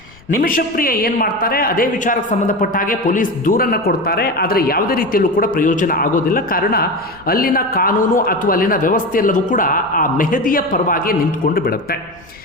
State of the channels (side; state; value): left; noise; rumble, 26 dB below the sound